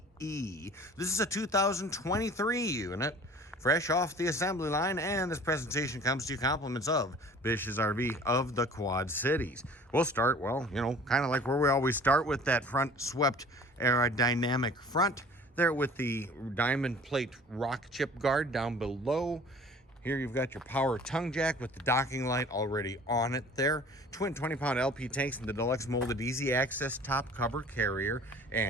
This is a 2023 unit, fresh off the assembly line. And this presentation comes to you compliments of Bish's RV of the Quad Cities. We'll start, well, kind of like where we always start, with that front swept aerodynamic front there with the diamond plate rock chip guard down below. Here you've got your power tongue jack with the docking light already on it there. Twin 20-pound LP tanks and the deluxe molded easy access top cover carrier.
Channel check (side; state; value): both; normal; correlation 0.47